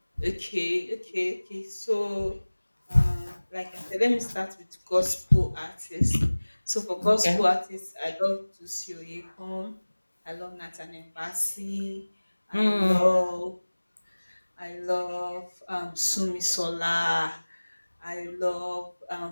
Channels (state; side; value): inverted; both; correlation -1.00